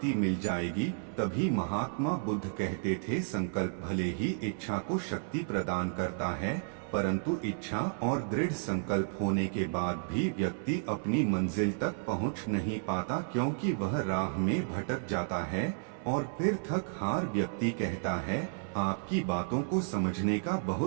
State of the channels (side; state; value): left; silent; 56 dB below the other